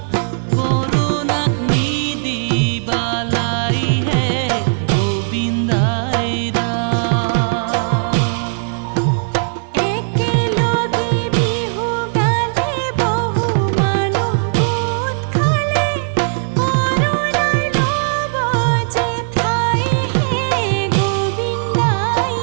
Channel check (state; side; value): silent; left; digital silence